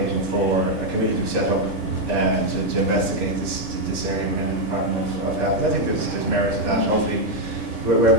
for a committee to be set up to investigate this area within the Department of Health. I think there's merit to that. Hopefully,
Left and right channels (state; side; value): normal; both; correlation 0.02